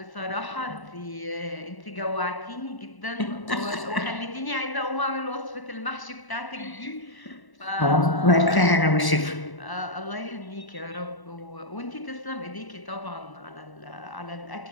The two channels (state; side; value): late; right; 1.0 ms